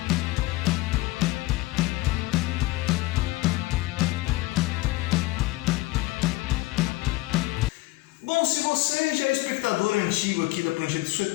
Bom, se você já é espectador antigo aqui da Prancheta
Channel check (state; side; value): quieter; right; 19.9 dB